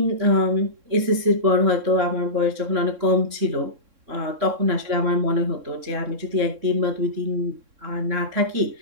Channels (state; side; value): late; left; 3.6 ms